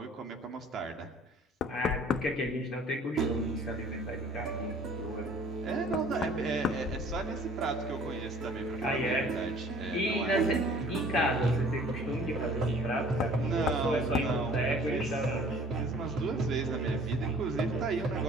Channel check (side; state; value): both; normal; correlation 0.51